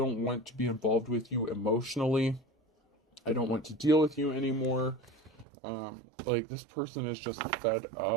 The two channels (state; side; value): drops out; left; at 5.5 s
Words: want to be involved with you emotionally. I don't want to deal with you anymore. Like, this person is just fed